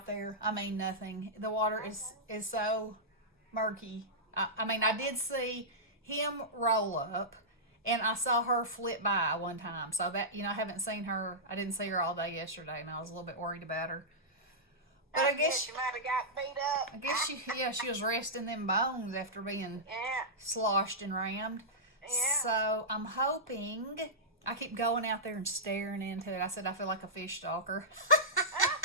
there. I mean, nothing. The water is so murky. I mean, I did see him roll up, and I saw her flip by one time. So that, you know, I haven't seen her. I didn't see her all day yesterday, and I was a little bit worried about her. But yeah. I guess You might have got beat up. she was resting them bones after being Yeah. sloshed and rammed. Yeah. So I'm hoping. I keep going out there and staring into it. I said I feel like a fish stalker.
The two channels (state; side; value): normal; both; correlation -0.14